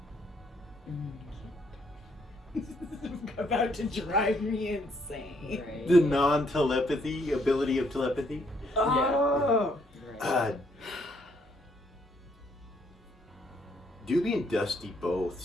About to drive me insane. Right. The non-telepathy ability of telepathy. Oh. Right. Doobie and Dusty both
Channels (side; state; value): both; normal; correlation 0.70